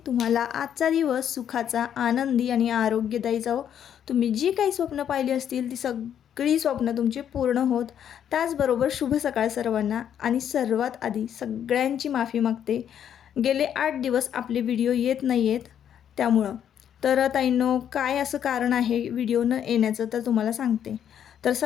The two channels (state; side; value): quieter; right; 9.3 dB